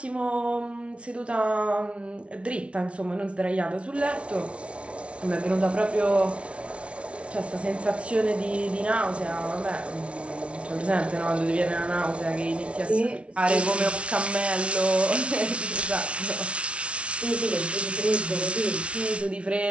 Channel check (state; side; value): late; left; 0.061 ms